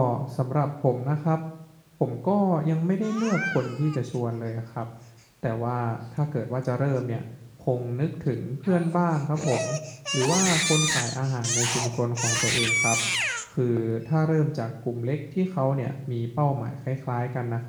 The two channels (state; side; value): identical; both; correlation 1.00